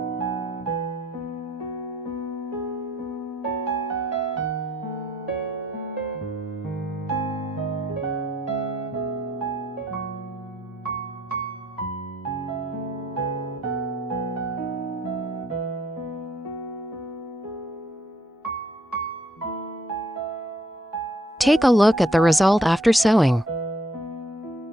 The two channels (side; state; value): both; normal; correlation 0.67